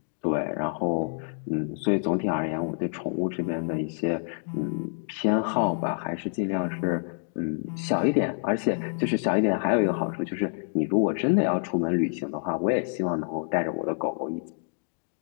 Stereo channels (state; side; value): silent; right; digital silence